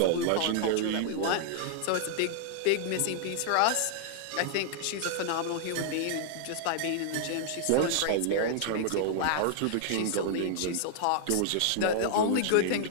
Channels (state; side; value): different; both; correlation -0.01